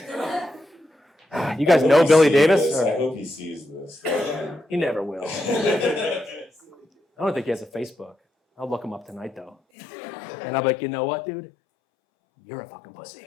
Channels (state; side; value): drops out; right; at 9.6 s